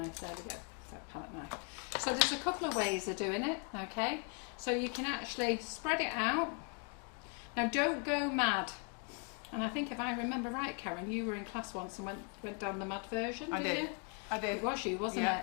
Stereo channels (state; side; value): quieter; right; 38.9 dB